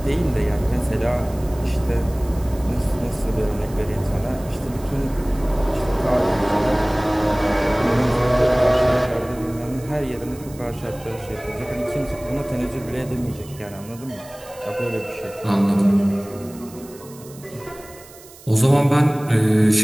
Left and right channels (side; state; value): right; noise; hiss, 21 dB below the sound